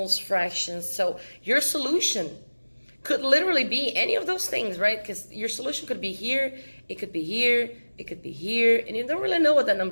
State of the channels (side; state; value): both; inverted; correlation -1.00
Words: fractions. So your solution could literally be any of those things, right? Because your solution could be here, it could be here, it could be here, and you don't really know what that